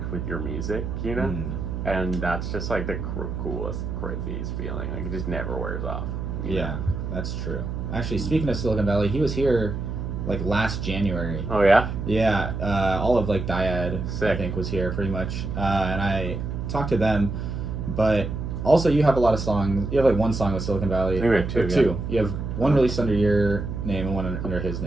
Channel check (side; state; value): right; noise; hum, 4 dB below the sound